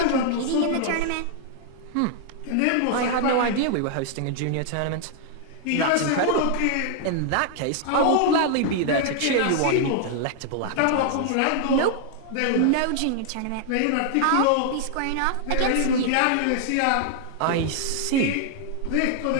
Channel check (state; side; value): different; both; correlation 0.00